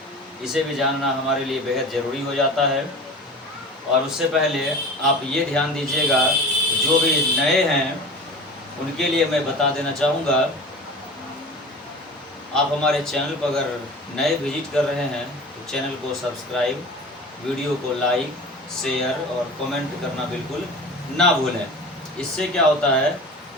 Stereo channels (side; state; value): both; normal; correlation 0.37